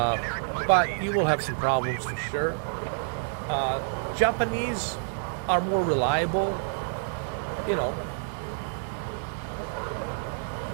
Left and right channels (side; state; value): left; silent; 59 dB below the other